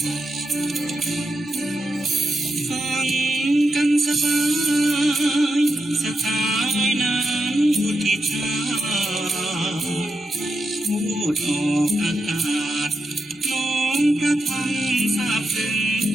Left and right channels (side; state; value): both; normal; correlation 0.86